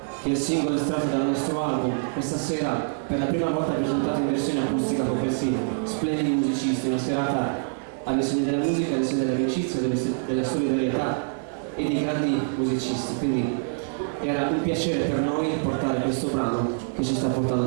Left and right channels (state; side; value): silent; left; digital silence